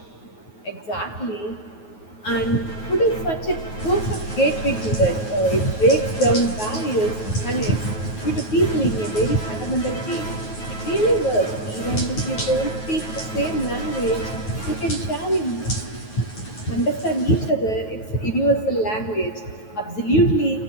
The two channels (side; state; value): right; late; 9.3 ms